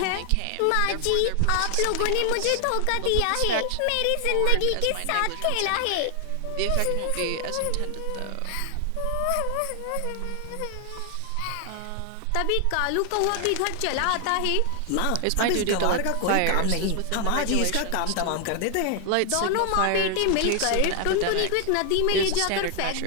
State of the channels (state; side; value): different; both; correlation 0.00